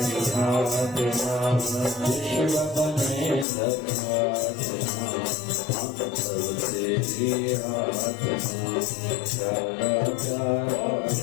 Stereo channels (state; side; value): drops out; right; at 3.5 s